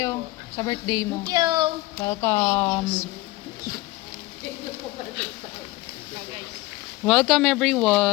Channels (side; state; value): right; quieter; 20.0 dB